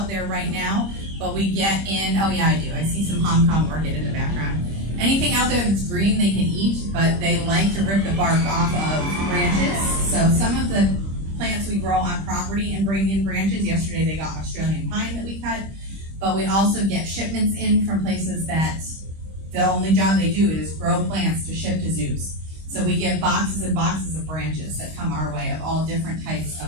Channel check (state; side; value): late; left; 25 ms